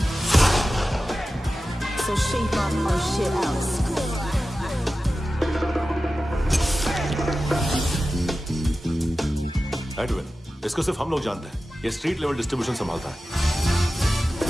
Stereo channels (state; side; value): normal; both; correlation 0.94